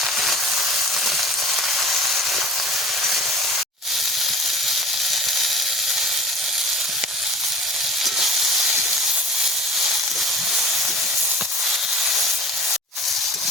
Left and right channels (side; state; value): both; normal; correlation 0.40